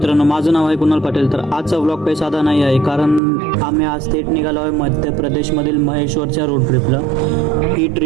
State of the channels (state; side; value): drops out; left; at 3.2 s